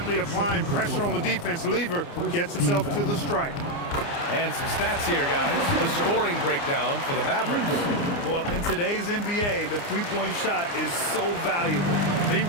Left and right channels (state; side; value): late; right; 29 ms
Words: applying pressure on the defense. Lever gets himself to the strike. And some stats here, guys. The scoring breakdown for the Mavericks. Well, in today's NBA, the three-point shot is so valuable. They